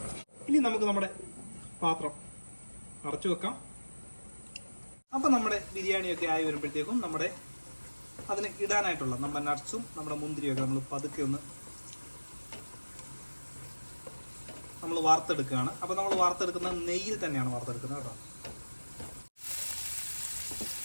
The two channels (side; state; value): both; inverted; correlation -1.00